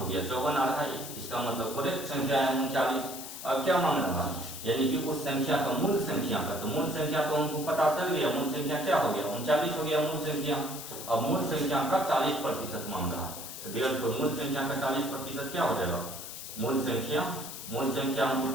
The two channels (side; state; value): left; noise; hiss, 10 dB below the sound